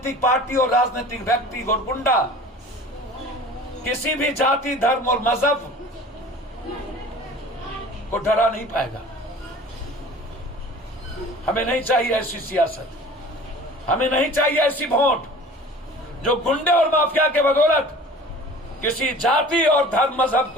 पार्टी और राजनीतिक व्यक्ति और गुंडा किसी भी जाति, धर्म और मजहब को डरा नहीं पाएगा। हमें नहीं चाहिए ऐसी सियासत, हमें नहीं चाहिए ऐसी वोट जो गुंडे और माफिया के बदौलत किसी जाति और धर्म मजहब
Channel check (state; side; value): normal; both; correlation 0.43